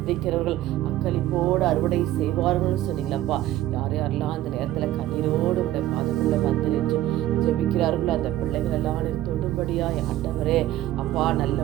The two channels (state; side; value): quieter; left; 14.3 dB